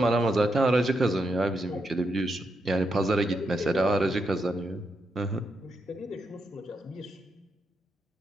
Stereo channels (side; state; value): both; normal; correlation 0.83